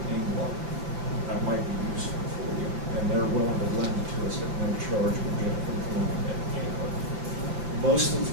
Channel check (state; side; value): late; left; 6.1 ms